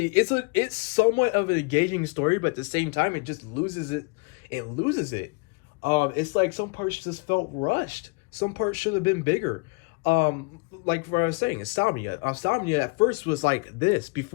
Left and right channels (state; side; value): quieter; right; 30.8 dB